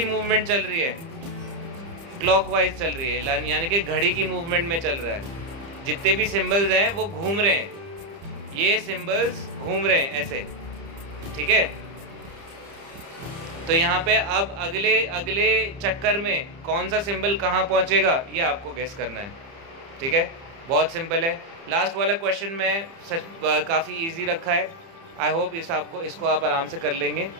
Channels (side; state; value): left; late; 30 ms